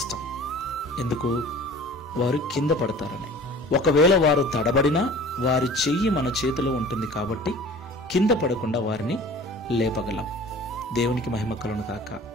ఎందుకు? వారు కింద పడతారని. ఒకవేళ వారు తడబడినా వారి చెయ్యి మన చేతిలో ఉంటుంది కాబట్టి కింద పడకుండా వారిని లేపగలం. దేవునికి మహిమ కలుగును గాక.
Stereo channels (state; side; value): normal; both; correlation 0.44